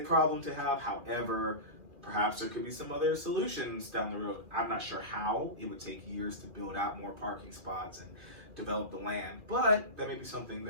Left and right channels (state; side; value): late; left; 2.4 ms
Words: problem to have. However, Perhaps there could be some other solutions down the road. I'm not sure how. It would take years to build out more parking spots and develop the land, but that may be something